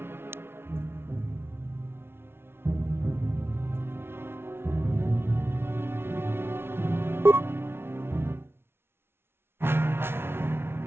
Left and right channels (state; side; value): late; left; 0.12 ms